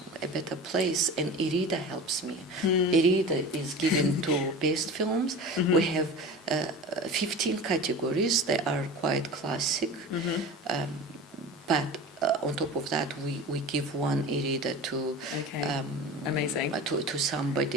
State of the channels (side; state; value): both; normal; correlation 0.34